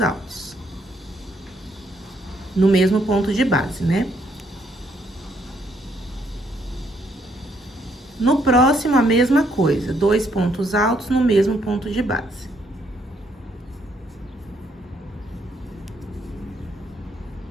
No mesmo ponto de base, né? No próximo, a mesma coisa, 2 pontos altos no mesmo ponto de base.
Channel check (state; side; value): normal; both; correlation 0.71